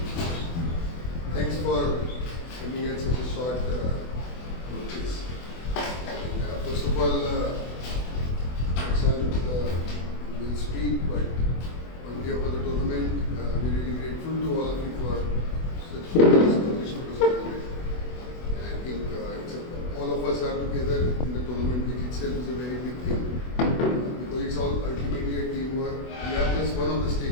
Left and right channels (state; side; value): late; right; 24 ms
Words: for coming at such a short notice. First of all, Prashant will speak, but on behalf of the tournament, we're really grateful to all of you for such celebration of the tournament. And I think all of us are together in the tournament, which itself is a very big thing. Because it's all ultimately a teamwork. We are just one of the